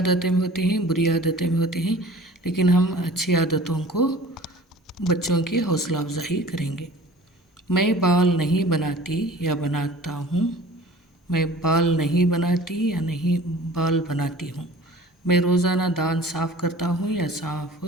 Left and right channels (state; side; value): normal; both; correlation 0.45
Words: भी होती हैं, बुरी आदतें भी होती हैं, लेकिन हम अच्छी आदतों को बच्चों की हौसला अफजाई करेंगे। मैं बाल नहीं बनाती या बनाता हूँ। मैं बाल नहीं बनाती या नहीं बाल बनाती हूँ। मैं रोज़ाना दांत साफ़ करता हूँ या साफ़